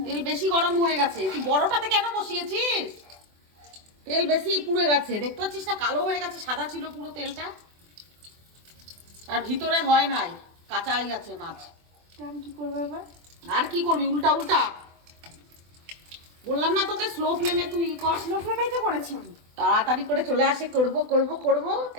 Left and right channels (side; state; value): left; late; 24 ms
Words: তেল বেশি গরম হয়ে গেছে। তুই বড়টাতে কেন বসিয়েছিস? তেল বেশি পুড়ে গেছে, দেখতে পাচ্ছিস না? কালো হয়ে গেছে, সাদা ছিল পুরো তেলটা, আর ভিতরে হয় নাই, কাঁচাই আছে মাছ। আমি কি করবো এবার? আর কি করবি? উল্টা উল্টা বললাম না তোকে, স্লো ফ্লেমে তুই কর। স্লো ফ্লেমেই তো করেছি আমি। তাড়াতাড়ি করে চলে আসে, করব করব করব,